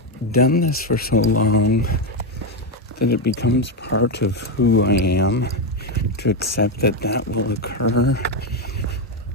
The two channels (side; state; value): both; normal; correlation 0.08